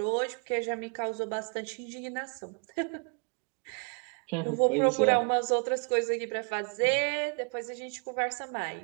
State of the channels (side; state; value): left; quieter; 37.6 dB